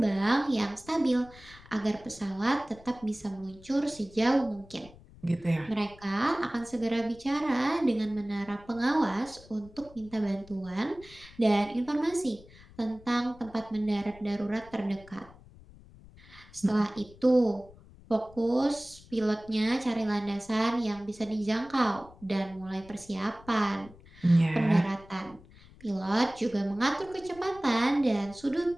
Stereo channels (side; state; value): left; noise; rumble, 22 dB below the sound